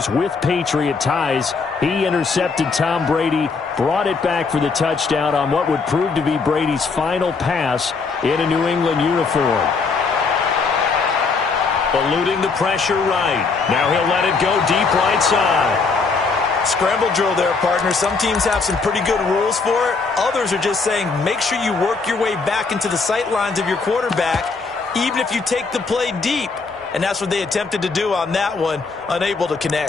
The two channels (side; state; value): right; quieter; 4.5 dB